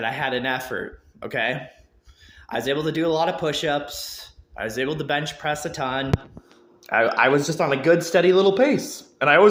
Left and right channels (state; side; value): identical; both; correlation 1.00